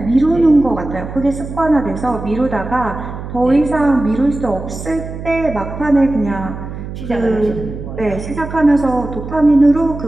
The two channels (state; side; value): noise; right; hum, 9 dB below the sound